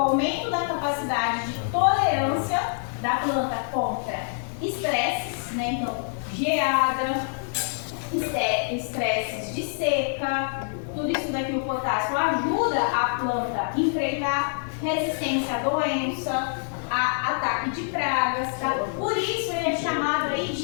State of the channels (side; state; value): right; silent; digital silence